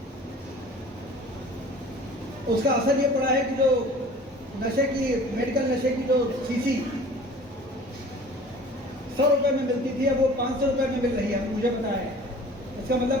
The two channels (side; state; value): both; normal; correlation 0.45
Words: उसका असर ये पड़ा है कि जो नशे की, मेडिकल नशे की जो शीशी 100 रुपए में मिलती थी, अब वो 500 रुपए में मिल रही है, मुझे पता है। इसका मतलब